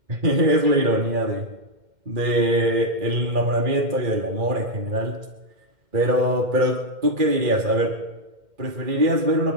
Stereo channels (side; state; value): left; late; 2.1 ms